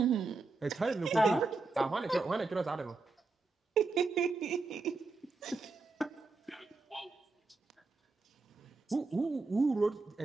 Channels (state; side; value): quieter; left; 3.9 dB